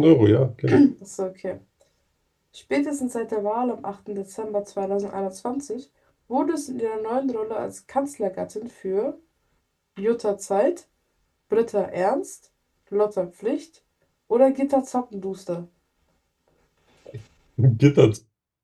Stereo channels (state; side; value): identical; both; correlation 1.00